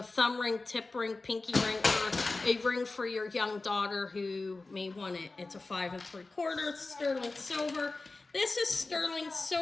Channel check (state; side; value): quieter; right; 3.5 dB